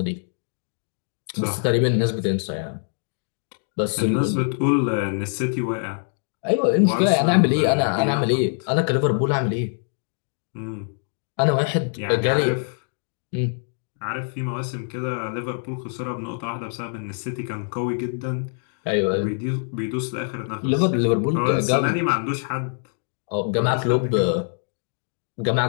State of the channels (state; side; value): silent; right; 63 dB below the other